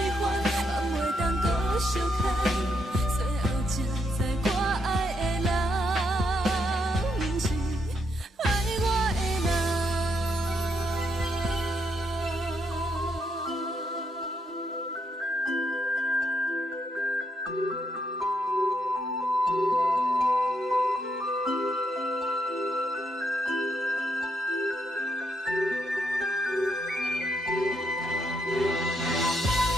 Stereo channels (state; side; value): normal; both; correlation 0.77